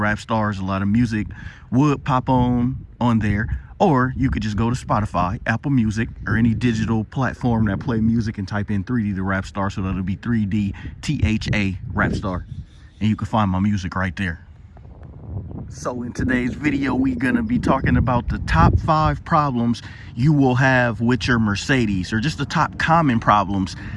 Stars. A lot of music would pop on there. Or you could just go to Spotify, Apple Music, or any digital platform that play music and type in 3D the Rap Star. So that'll be 3D THA Rap Star. And you can find my music right there. So in today's video, we're going to be talking about the top 5 problems you will have with your Mercedes, or just the top common problems,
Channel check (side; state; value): both; identical; correlation 1.00